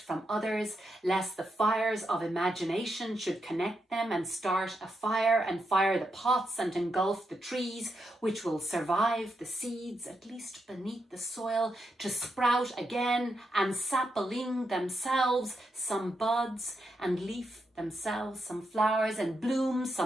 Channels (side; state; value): both; normal; correlation 0.83